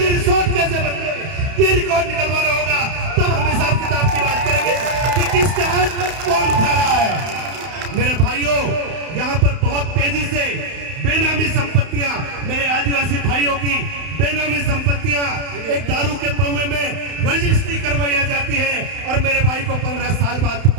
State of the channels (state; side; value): late; left; 31 ms